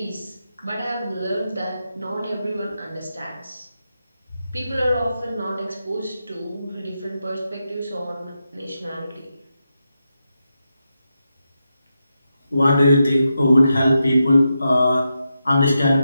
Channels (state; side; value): inverted; both; correlation -0.87